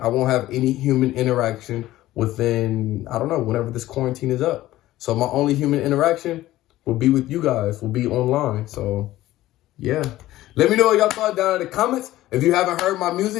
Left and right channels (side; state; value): right; quieter; 15.6 dB